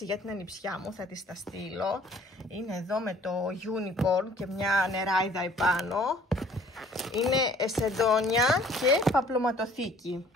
για την ανιψιά μου. Θα τις τα στείλω. Είναι εδώ με το unicorn και μια νεράιδα επάνω. Είναι σεντόνια και παπλωματοθήκη.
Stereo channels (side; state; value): both; normal; correlation 0.55